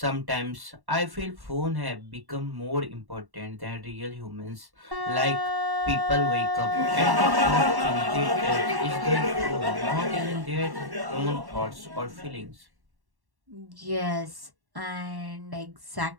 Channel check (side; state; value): left; late; 1.1 ms